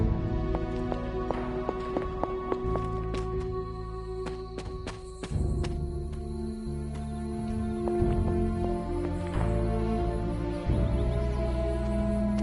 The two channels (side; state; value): both; identical; correlation 1.00